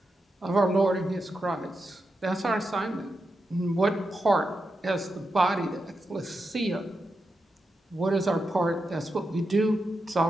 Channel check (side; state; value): both; normal; correlation 0.87